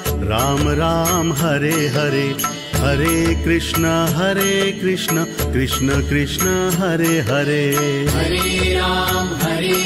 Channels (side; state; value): both; identical; correlation 1.00